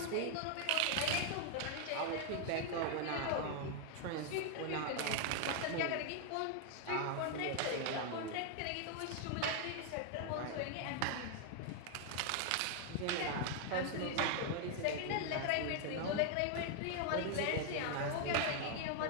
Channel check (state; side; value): different; both; correlation 0.00